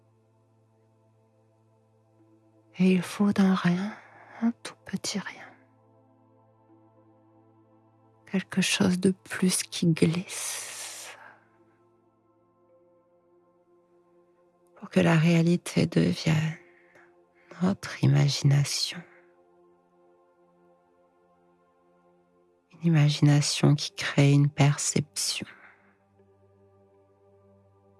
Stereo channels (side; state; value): both; identical; correlation 1.00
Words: Et il faut d'un rien, un tout petit rien. Quelque chose de plus qui glisse pour que la réalité devienne notre imagination. Une imagination qui crée une perception.